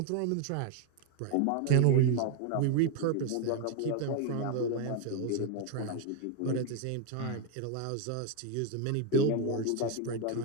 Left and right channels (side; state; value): both; different; correlation 0.01